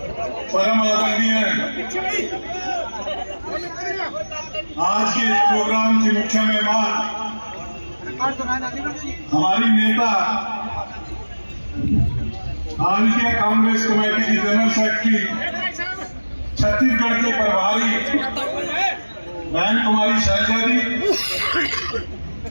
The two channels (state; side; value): inverted; both; correlation -1.00